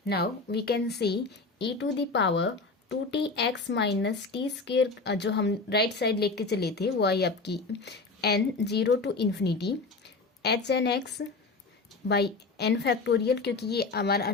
Now we can see e to the power 2tx minus t² जो हम right side लेके चले थे वो आई आपकी n 0 to infinity hnx by n factorial, क्योंकि ये हमारा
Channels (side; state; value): right; quieter; 3.8 dB